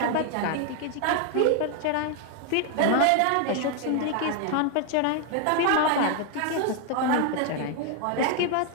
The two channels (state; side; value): different; both; correlation 0.01